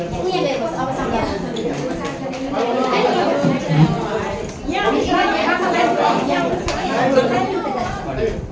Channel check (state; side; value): identical; both; correlation 1.00